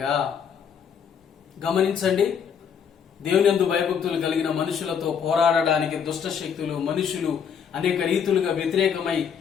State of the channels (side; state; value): right; quieter; 7.4 dB